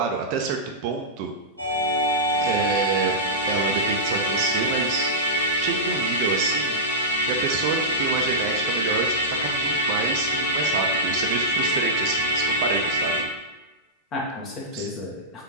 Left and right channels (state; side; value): normal; both; correlation -0.14